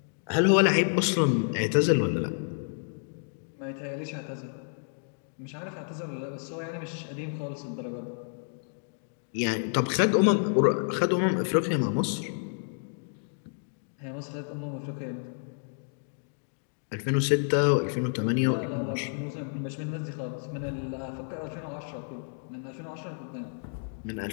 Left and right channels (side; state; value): right; silent; digital silence